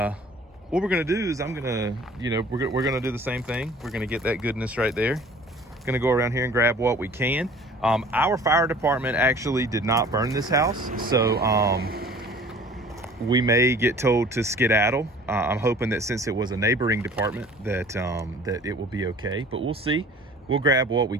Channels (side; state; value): both; normal; correlation 0.48